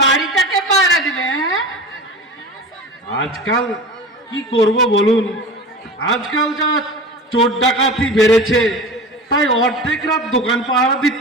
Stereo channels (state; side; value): normal; both; correlation 0.33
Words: বাড়িটাকে পাহারা দিবে? হ্যাঁ, আজকাল কি করব বলুন, আজকাল যা চোর ডাকাতি বেড়েছে, তাই অর্ধেক রাত দোকান পাহারা